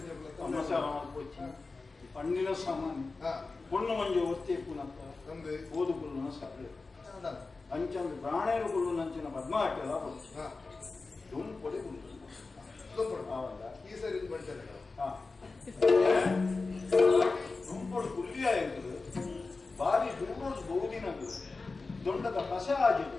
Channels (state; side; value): quieter; right; 3.8 dB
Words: ಜೊಗುಳ್ಳೆ ಪಣ್ಣಿನ ಸಾಮಾನ್ಯ பொண்ணு ಮಂಜು ಒತ್ತಿ ಪುನಪ್ಪ ತಂದೆ ಓದುಗುಳ್ಳು ಸರಳ ಅಂಚಂದು ಪ್ರಾಣೇರು ಗುಳ್ಳು ನಂಚಿನ ಪದ್ಮಾಟೆಲ್ಲ ದುಂಪೊಡೆ ಗುಳ್ಳು ಈ ಸರಿ ಬಂಟೆ ದುಂಪೊಡು ಗುಳ್ಳಿಯ ಎಂಬುದು ಬಾರಿ ದೂರೋದು ಬಹುದಿನದು ದೊಡ್ಡದ ಕಸ